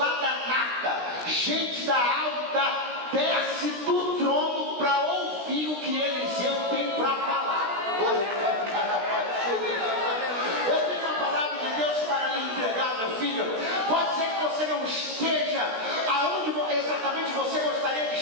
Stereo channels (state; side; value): late; left; 16 ms